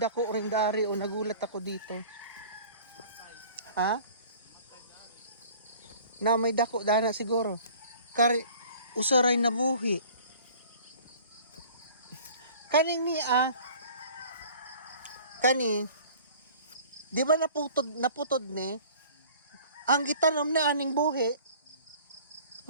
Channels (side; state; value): both; inverted; correlation -0.48